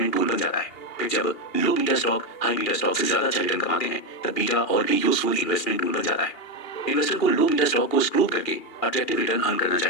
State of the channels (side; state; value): right; late; 2.8 ms